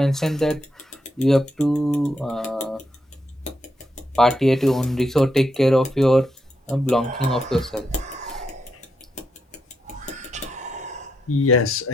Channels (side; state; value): both; normal; correlation 0.81